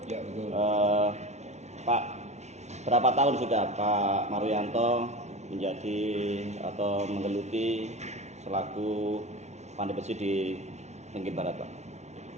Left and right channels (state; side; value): late; left; 0.32 ms